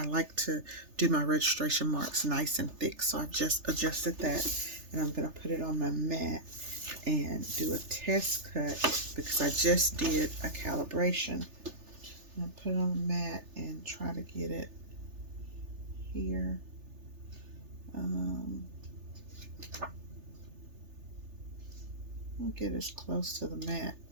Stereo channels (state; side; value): late; left; 3.4 ms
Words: like to do my registration marks nice and thick, so I've just adjusted that, and I'm gonna put it on my mat and do a test cut because I just did a calibration. I'm gonna put it on the mat and try to get it here. I'll get as close to the mat